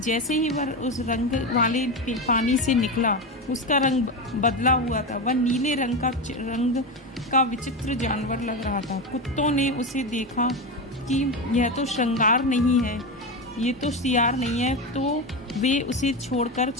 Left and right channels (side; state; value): both; normal; correlation 0.17